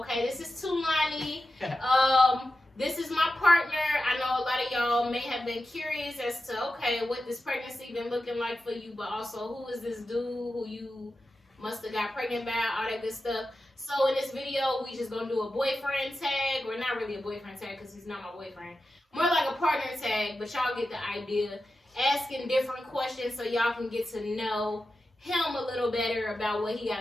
this is Tulani. This is my partner. I know a lot of y'all may have been curious as to, okay, what this pregnancy been looking like for you, but also who is this dude who you must have got pregnant by, all that good stuff. So in this video, we just gonna do a boyfriend tag, or not really a boyfriend tag because he's not my boyfriend. More like a partner tag, but y'all get the idea. Asking different questions so y'all can get to know him a little better about what he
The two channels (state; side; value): normal; both; correlation 0.92